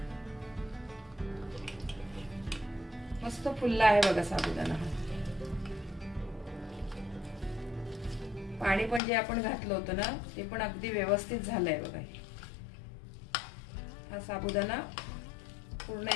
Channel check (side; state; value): right; drops out; at 9.0 s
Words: मस्त फुलला आहे बघा साबुदाणा। पाणी पण जे आपण घातलं होतं ना ते पण अगदी व्यवस्थित झालंय बघा। हा साबुदाणा पूर्ण